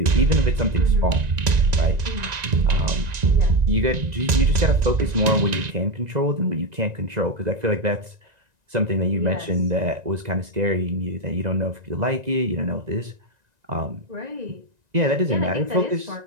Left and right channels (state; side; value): late; left; 1.9 ms